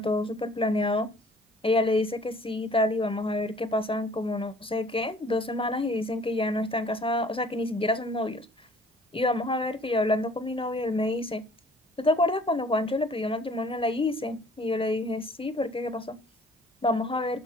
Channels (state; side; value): normal; both; correlation 0.54